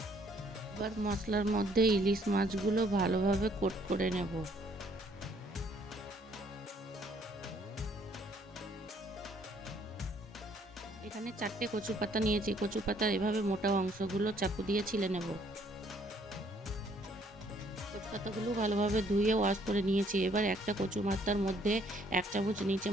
এবার মশলার মধ্যে ইলিশ মাছগুলো ভালোভাবে কোট করে নেব। এখানে 4টে কচু পাতা নিয়েছি। কচু পাতার এভাবে মোটা অংশগুলো চাকু দিয়ে ছিলে নেব। কচু পাতাগুলো ভালোভাবে ধুয়ে ওয়াশ করে নিয়েছি। এবার একটা কচু পাতার মধ্যে 1 চামচ নিচে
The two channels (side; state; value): both; normal; correlation 0.64